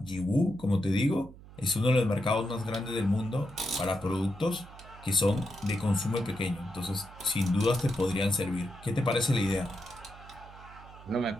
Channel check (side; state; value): right; noise; hum, 19 dB below the sound